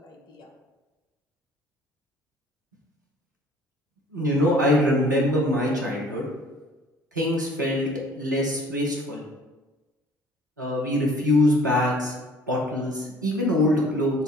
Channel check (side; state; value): both; normal; correlation 0.53